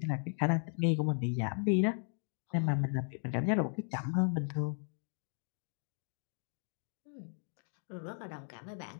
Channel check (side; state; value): right; silent; 54 dB below the other